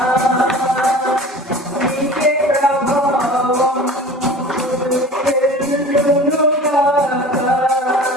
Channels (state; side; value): normal; both; correlation 0.40